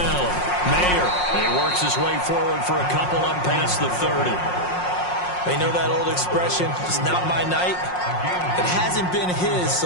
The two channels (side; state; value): right; late; 5.6 ms